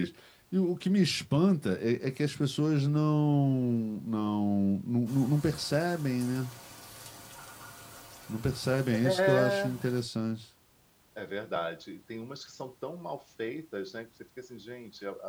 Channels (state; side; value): identical; both; correlation 1.00